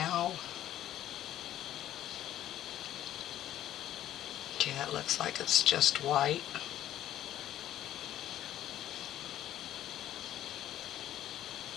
Okay, it looks like it's just white.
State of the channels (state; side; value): quieter; right; 12.4 dB